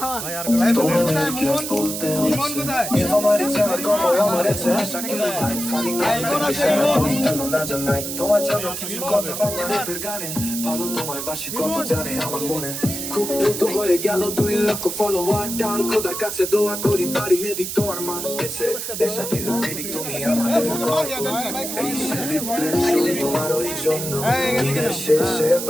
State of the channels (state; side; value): noise; right; hiss, 5 dB below the sound